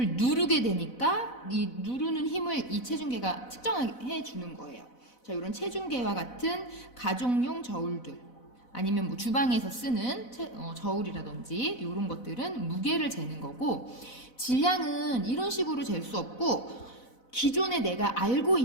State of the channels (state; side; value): late; right; 4.0 ms